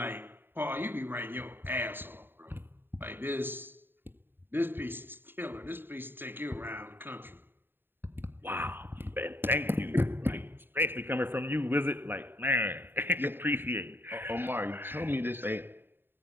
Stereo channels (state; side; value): late; left; 0.099 ms